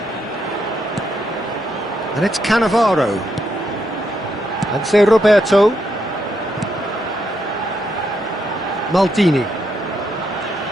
And it's Cannavaro. And say Roberto. Maldini.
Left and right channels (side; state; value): both; normal; correlation 0.79